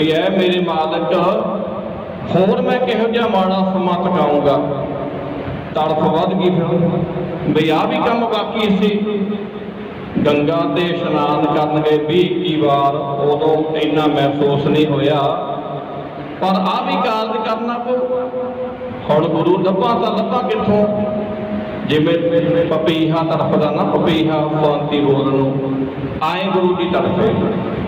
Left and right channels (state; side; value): identical; both; correlation 1.00